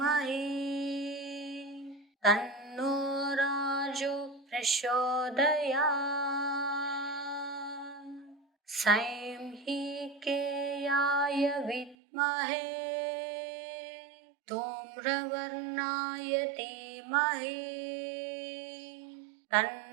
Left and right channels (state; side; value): drops out; left; at 12.0 s